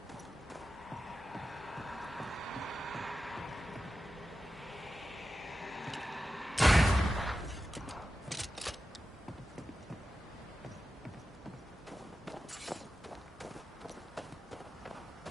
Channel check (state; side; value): normal; both; correlation 0.92